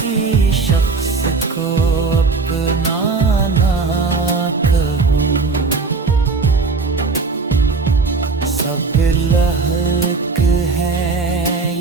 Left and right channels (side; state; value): left; quieter; 4.3 dB